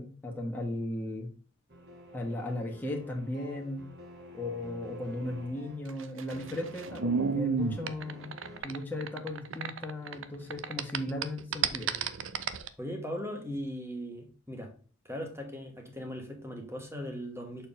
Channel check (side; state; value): both; normal; correlation 0.50